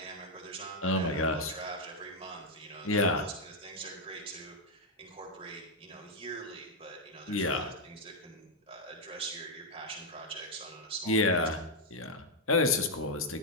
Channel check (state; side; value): normal; both; correlation -0.01